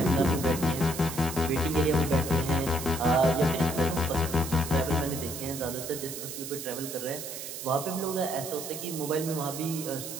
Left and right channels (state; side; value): noise; right; hiss, 8 dB below the sound